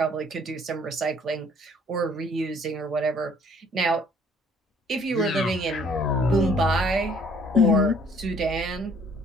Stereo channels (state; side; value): normal; both; correlation 0.59